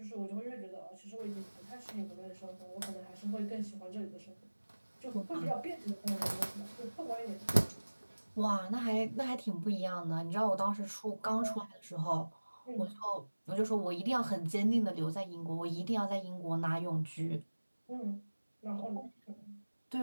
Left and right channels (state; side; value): inverted; both; correlation -1.00